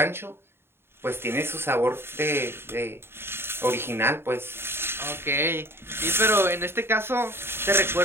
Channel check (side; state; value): left; late; 0.11 ms